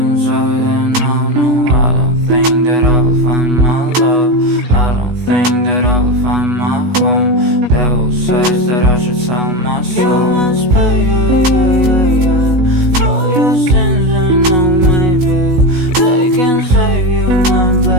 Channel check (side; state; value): left; late; 16 ms